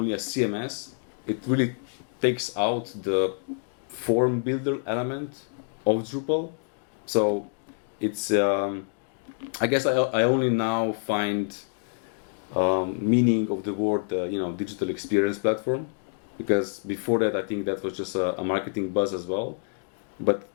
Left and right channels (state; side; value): silent; right; 60 dB below the other